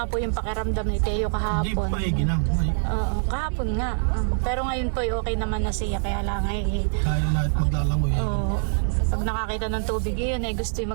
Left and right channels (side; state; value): left; silent; 62 dB below the other